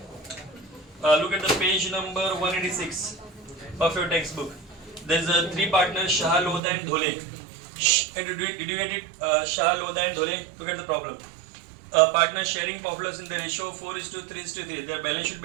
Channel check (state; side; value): drops out; left; at 6.6 s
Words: Look at the page number 186 of your textbook. There's three partners, Shah, Lodha and Dhole. Did you get it? Shah, Lodha and Dhole. Look at the problem. Partners sharing profits in the ratio 4:3:3. Their balance sheet